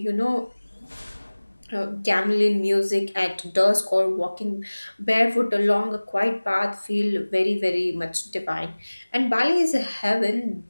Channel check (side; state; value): both; inverted; correlation -1.00